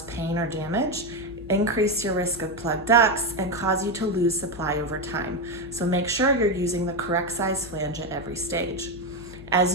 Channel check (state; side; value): noise; left; hum, 17 dB below the sound